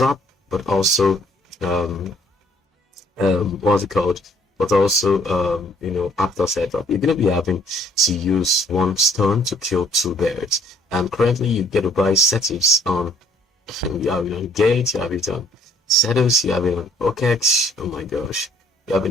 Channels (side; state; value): both; normal; correlation 0.61